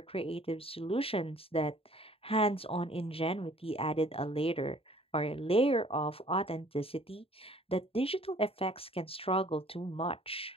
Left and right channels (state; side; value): late; right; 0.27 ms